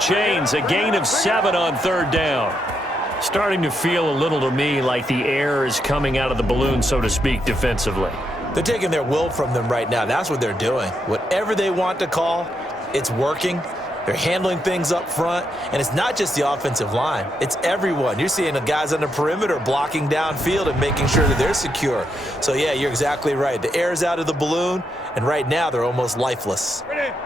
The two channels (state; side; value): normal; both; correlation 0.80